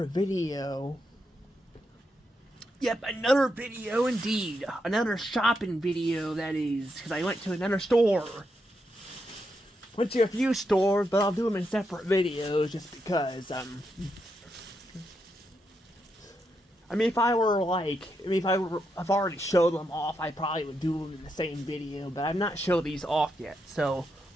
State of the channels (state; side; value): normal; both; correlation 0.82